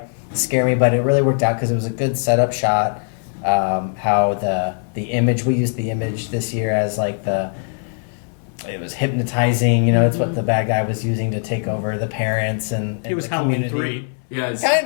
scared me, but it really worked out because it was a good setup shot. How the image, we used the image this year as like it was hypnotizing, it's what the bad guy was using to take over the parents and it was the Halloween community. 3. Yeah, it's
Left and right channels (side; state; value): right; silent; 61 dB below the other